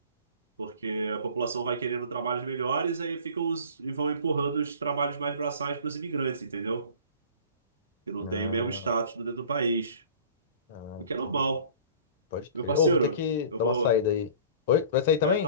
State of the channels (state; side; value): inverted; both; correlation -0.44